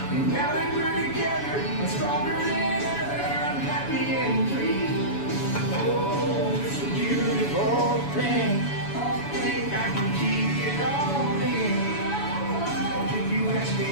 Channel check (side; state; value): right; late; 7.1 ms